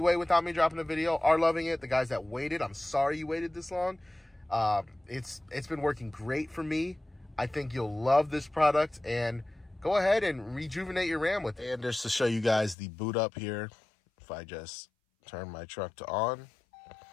without me dropping a video are loving it. The guys that waited, I'm sorry you waited this long. It's been working great for me. I think you'll love this product, and go ahead and rejuvenate your RAM with it. And just to show you guys the boot up here, if I just turn my truck to on.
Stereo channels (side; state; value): right; drops out; at 12.8 s